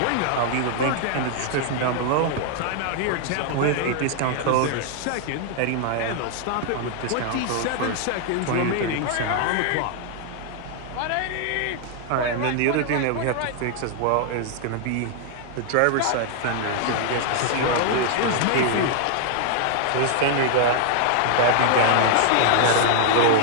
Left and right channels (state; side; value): different; both; correlation 0.00